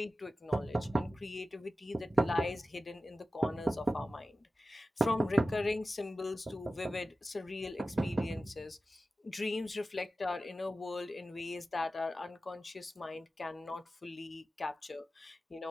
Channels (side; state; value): both; normal; correlation 0.94